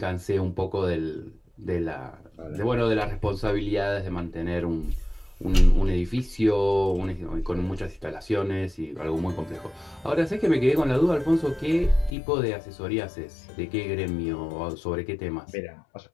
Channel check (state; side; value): drops out; right; at 12.2 s